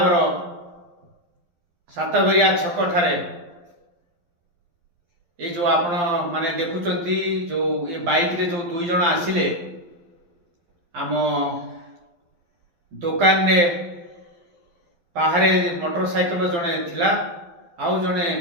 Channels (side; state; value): left; late; 12 ms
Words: सातघरिया छक ठारे ये जो आपण माने देखुचंती जो ये बाइक रे जो दुई जन आसिले आम दुकान रे बाहरे मोटरसाइकेल जड़े थिला आउ जड़े